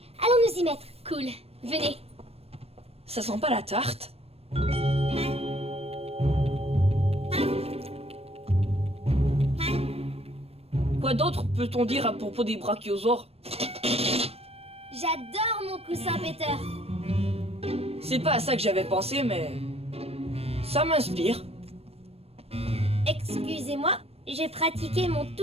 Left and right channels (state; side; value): late; left; 0.29 ms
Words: Allons nous y mettre. Cool, venez! Ça sent pas la tarte? Quoi d'autre peut-on dire à propos des brachiosaures? J'adore mon coussin Peter. C'est pas à ça que j'avais pensé, mais... ça m'inspire. Excusez-moi, j'ai pratiqué mon